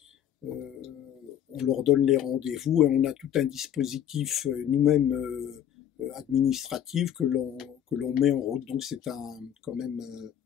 on leur donne les rendez-vous et on a tout un dispositif nous-mêmes administratif que l'on met en route. Donc c'est quand même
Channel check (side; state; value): right; quieter; 10.0 dB